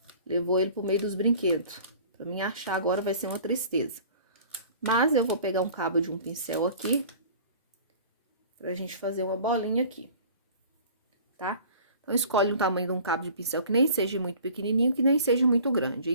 levou ele pro meio dos brinquedos. Pra mim achar agora vai ser uma tristeza. Mas eu vou pegar um cabo de um pincel aqui pra gente fazer uma bolinha aqui, tá? Então, escolhe um tamanho de um cabo de pincel que nem seja muito pequenininho, que nem seja muito grande.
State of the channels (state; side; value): inverted; both; correlation -0.46